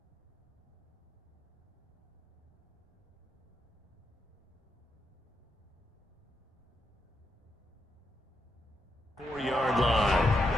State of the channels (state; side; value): normal; both; correlation 0.82